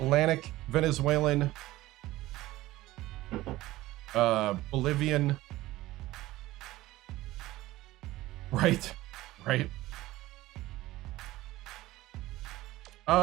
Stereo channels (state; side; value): quieter; left; 17.2 dB